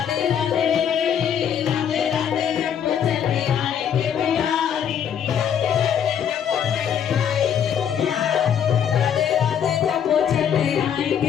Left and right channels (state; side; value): quieter; right; 8.6 dB